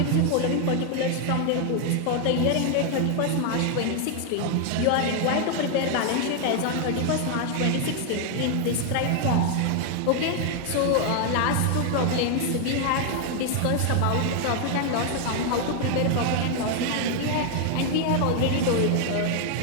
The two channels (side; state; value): both; different; correlation 0.00